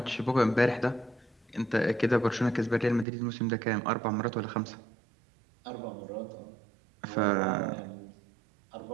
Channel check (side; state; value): left; drops out; at 3.1 s